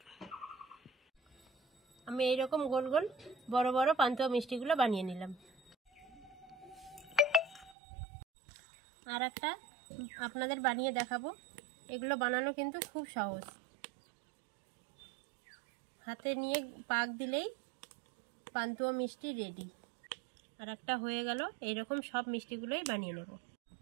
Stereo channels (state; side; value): drops out; left; at 7.8 s